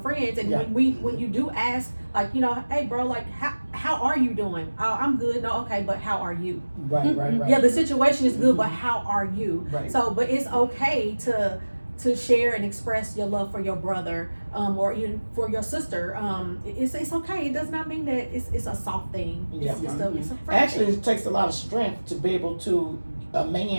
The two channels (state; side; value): inverted; both; correlation -1.00